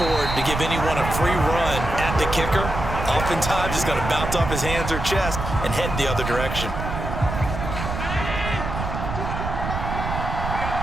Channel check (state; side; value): noise; right; rumble, 5 dB below the sound